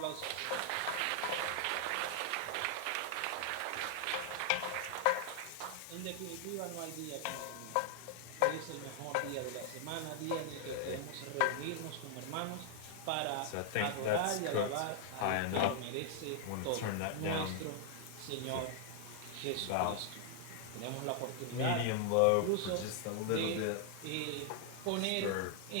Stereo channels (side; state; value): both; different; correlation 0.00